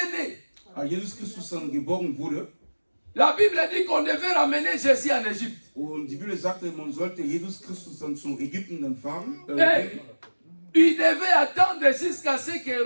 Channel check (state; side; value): inverted; both; correlation -1.00